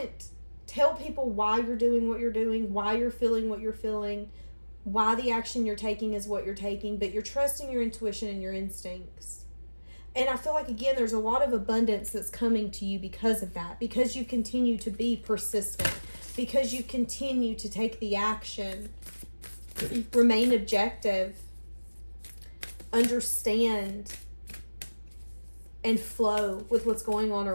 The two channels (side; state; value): both; inverted; correlation -1.00